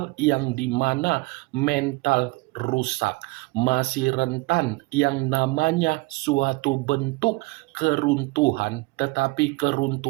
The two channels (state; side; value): quieter; left; 23.1 dB